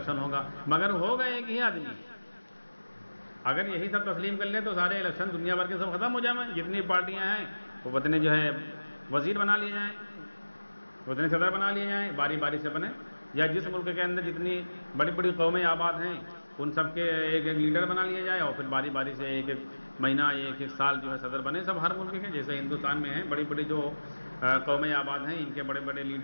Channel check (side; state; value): both; inverted; correlation -1.00